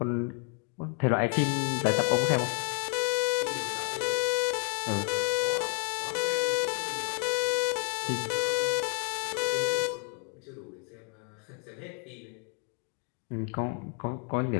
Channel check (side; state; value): right; quieter; 39.2 dB